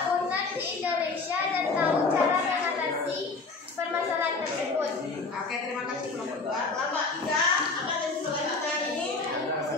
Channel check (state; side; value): quieter; right; 4.0 dB